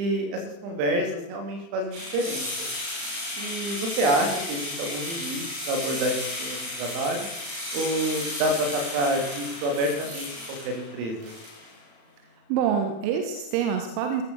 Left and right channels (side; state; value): left; late; 35 ms